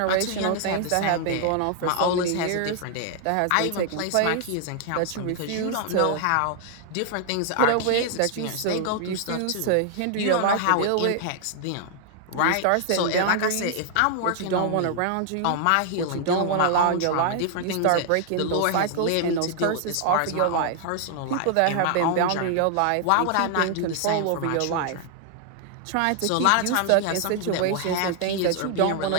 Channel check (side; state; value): both; different; correlation 0.00